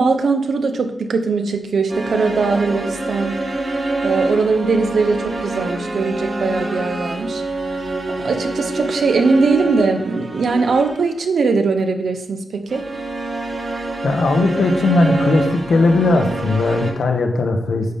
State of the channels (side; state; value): both; normal; correlation 0.85